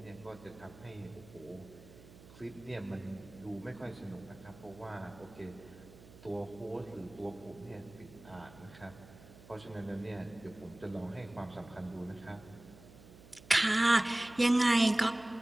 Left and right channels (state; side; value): noise; right; hum, 20 dB below the sound